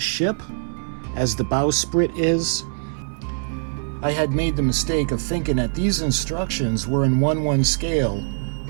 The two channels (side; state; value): left; silent; 64 dB below the other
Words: ship, as the bowsprit is. I had made the mistake of thinking that these instructions were in 1/1 scale,